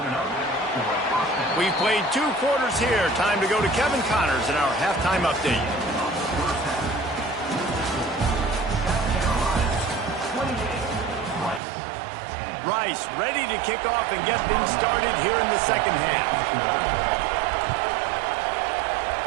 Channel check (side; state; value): left; drops out; at 11.6 s